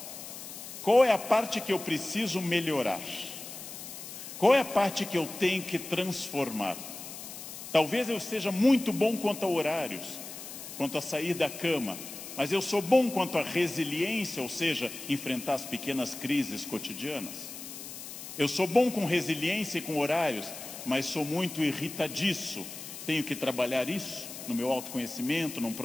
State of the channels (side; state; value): left; noise; hiss, 11 dB below the sound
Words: Qual é a parte que eu preciso melhorar? Qual é a parte que eu tenho que transformar? Talvez eu seja muito bom quanto a horários, quanto a sair da cama, mas eu sou bom quanto a resiliência, ou seja, enfrentar as pequenas crises cotidianas. Eu sou bom com resiliência e com horários, mas sou muito irritadiço. Tenho que trabalhar isso no meu autoconhecimento, num